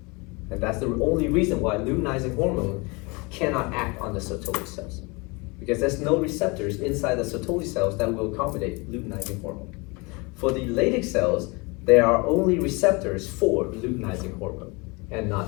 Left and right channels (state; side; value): quieter; right; 27.7 dB